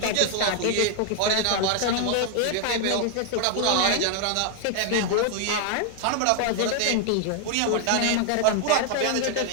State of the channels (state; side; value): different; both; correlation 0.00